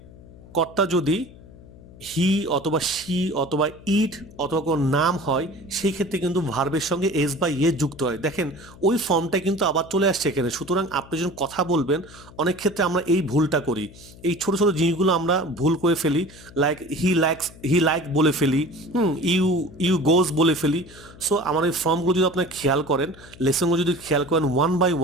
কর্তা যদি হি অথবা শি অথবা ইট অথবা কোনো নাম হয়, সেই ক্ষেত্রে কিন্তু ভার্বের সঙ্গে এস বা ইয়ে যুক্ত হয়। দেখেন ওই ফর্মটা কিন্তু আবার চলে আসছে এখানে। সুতরাং আপনি যখন কথা বলবেন, অনেক ক্ষেত্রে আমরা এই ভুলটা করি, এই ছোট ছোট জিনিসগুলো আমরা ভুল করে ফেলি। লাইক হি লাইক বলে ফেলি, ইউ ইউ গোজ বলে ফেলি। সো আমার এই ফর্মগুলো যদি আপনার খেয়াল করেন, লেসনগুলো যদি খেয়াল করেন ওয়ান বাই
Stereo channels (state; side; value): noise; left; hum, 20 dB below the sound